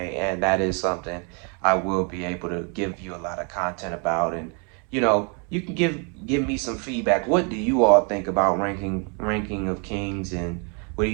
that is something I will be able to give you a lot of content about. And you know, you can give me some feedback. What do you all think about ranking of Kings, and what do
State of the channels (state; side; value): quieter; left; 36.6 dB